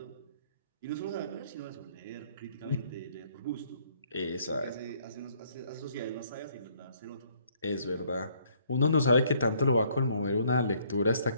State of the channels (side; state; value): both; inverted; correlation -0.65